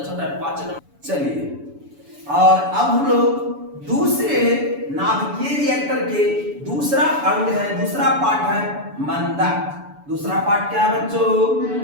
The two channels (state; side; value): late; left; 7.0 ms